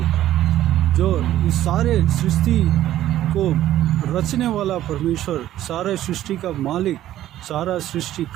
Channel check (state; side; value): quieter; left; 13.0 dB